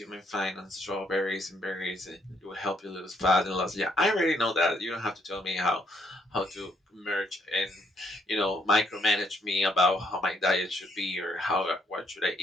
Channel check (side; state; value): both; normal; correlation 0.72